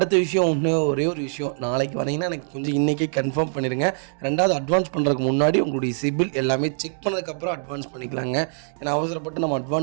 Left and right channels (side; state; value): left; silent; digital silence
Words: விஷயம் ஒரே ஒரு விஷயம், நாளைக்கு வரீங்கன்னா எனக்கு கொஞ்சம் இன்றைக்கே கன்ஃபார்ம் பண்ணிடுங்க. ரெண்டாவது அட்வான்ஸ் பண்ணுறதுக்கு முன்னாடி உங்களுடைய சிபில் எல்லாமே செக் பண்ணதுக்கப்புறம் அட்வான்ஸ் பண்ணிக்கலாங்க. ஏன்னா அவசரப்பட்டு நம்ம